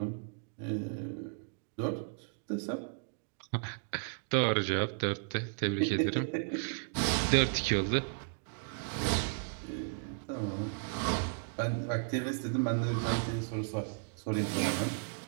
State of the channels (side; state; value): left; silent; digital silence